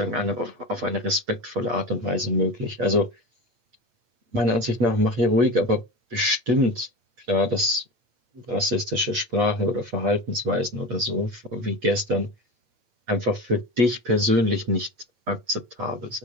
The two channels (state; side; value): late; left; 8.1 ms